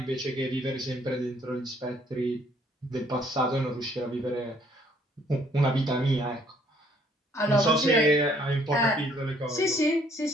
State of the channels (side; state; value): both; normal; correlation 0.63